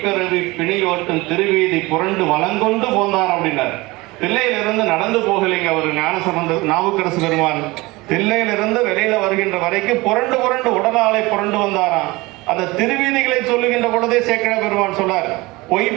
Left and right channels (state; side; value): quieter; left; 22.0 dB